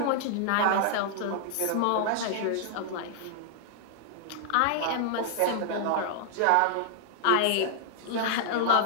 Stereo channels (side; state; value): both; different; correlation -0.01